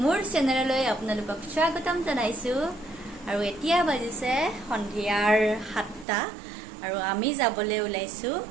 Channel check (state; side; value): drops out; left; at 6.1 s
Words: মোৰ চেনেললৈ আপোনালোকক স্বাগতম জনাইছো আৰু এতিয়া বাজিছে সন্ধিয়াৰ 7টা আৰু আমি যাবলৈ ওলাইছো